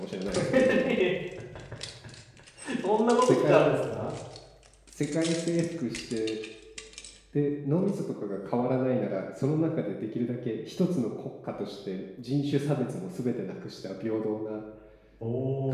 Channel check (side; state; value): both; identical; correlation 1.00